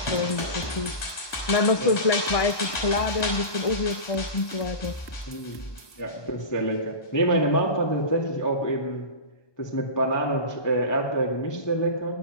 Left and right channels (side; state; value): right; late; 1.2 ms